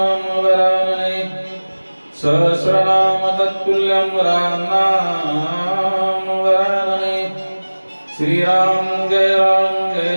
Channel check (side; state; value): both; inverted; correlation -1.00